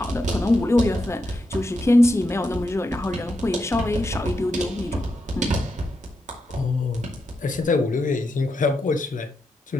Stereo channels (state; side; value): normal; both; correlation 0.85